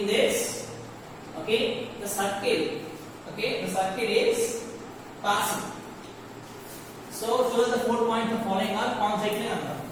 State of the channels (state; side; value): identical; both; correlation 1.00